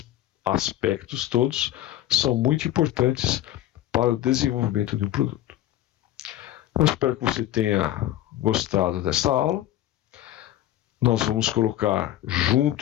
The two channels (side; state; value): right; quieter; 13.4 dB